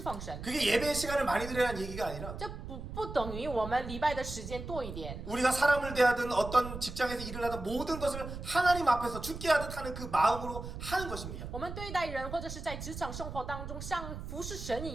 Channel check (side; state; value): right; noise; rumble, 9 dB below the sound